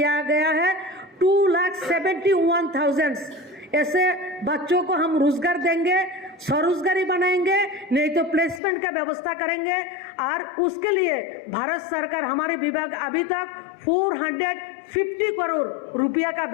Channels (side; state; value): right; drops out; at 8.6 s